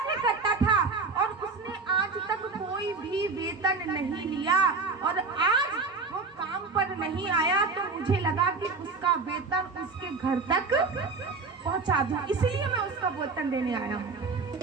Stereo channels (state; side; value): quieter; left; 4.4 dB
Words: करता था और उसने आज तक कोई भी वेतन नहीं लिया और आज वो काम पर नहीं आया तो मुझे लगा कि उसका वेतन उसके घर तक पहुंचा दूं, इसलिए मैं उसका वेतन देने आया हूँ।